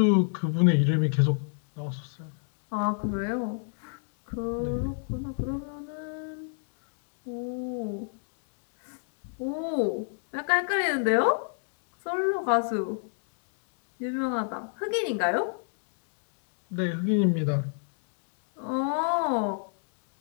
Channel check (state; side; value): silent; right; digital silence